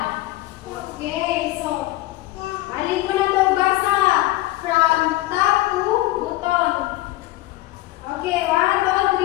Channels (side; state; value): right; quieter; 17.5 dB